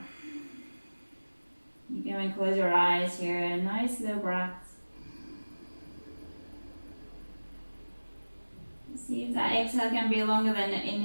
You can close your eyes here. Nice slow breath. See if that exhale can be longer than the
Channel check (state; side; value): inverted; both; correlation -1.00